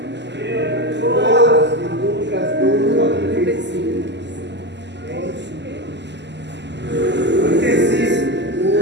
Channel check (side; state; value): left; late; 0.51 ms